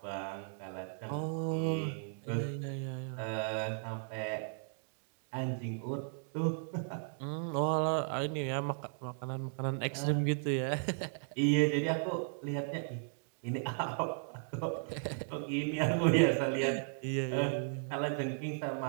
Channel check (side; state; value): left; silent; digital silence